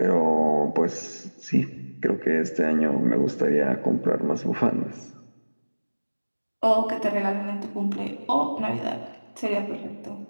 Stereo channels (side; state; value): both; inverted; correlation -1.00